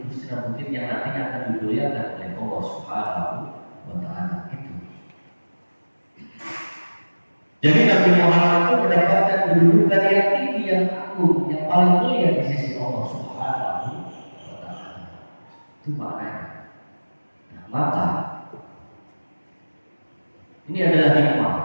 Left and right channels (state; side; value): inverted; both; correlation -1.00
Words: Tursina, bukit yang nantinya akan dimuliakan oleh Allah Subhanahu wa Ta'ala. Itu. Jadi Nabi Muhammad itu mendapatkan kedudukan yang tinggi, yang agung, yang paling mulia di sisi Allah Subhanahu wa Ta'ala. Itu maknanya. Nah, maka ini adalah hikmah,